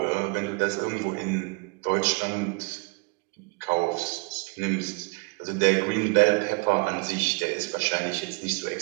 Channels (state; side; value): quieter; left; 31.2 dB